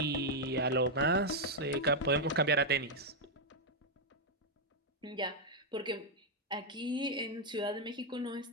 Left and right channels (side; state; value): both; normal; correlation -0.01